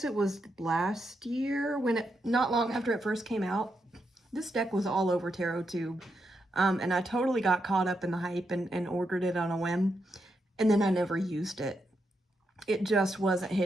it was last year, not long after it first came out. This deck was all over TarotTube, and I totally got caught up in the hype and ordered it on a whim, and then I never used it. It just wasn't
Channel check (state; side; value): normal; both; correlation 0.83